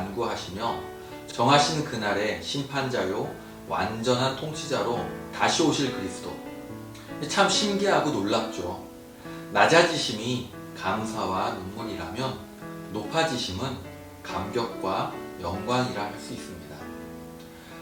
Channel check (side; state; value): both; identical; correlation 1.00